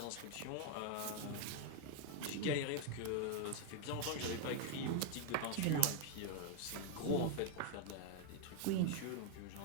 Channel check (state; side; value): different; both; correlation 0.00